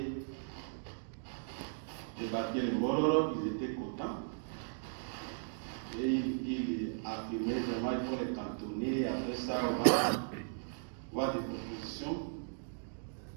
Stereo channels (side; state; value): left; silent; digital silence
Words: débarquer les Mororo, ils étaient contents. Et il affirmait vraiment qu'il faut les cantonner. Après ça, on va voir des propositions